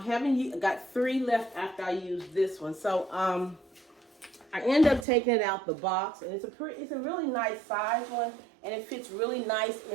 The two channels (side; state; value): left; drops out; at 5.1 s